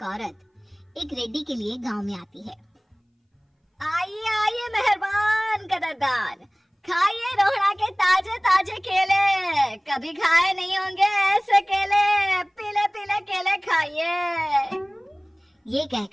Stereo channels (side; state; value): both; identical; correlation 1.00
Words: औरत एक रेड्डी के लिए गांव में आती है। आइए आइए मेहरबान कदरदान, खाइए रोहड़ा के ताजे ताजे केले, कभी खाए नहीं होंगे ऐसे केले, पीले पीले केले खाइए। ये